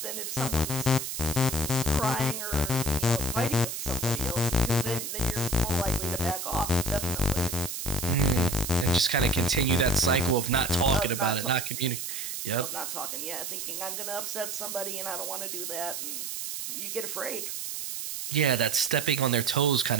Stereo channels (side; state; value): right; noise; hiss, 5 dB below the sound